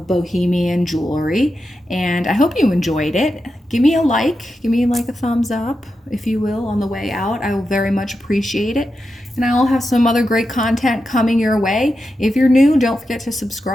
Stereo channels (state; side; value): normal; both; correlation 0.89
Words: Bohemian jewelry. And I hope you enjoyed it. Give me a like. Give me like a thumbs up, if you will, on the way out. I will very much appreciate it. and I'll have some other great content coming your way. If you're new, don't forget to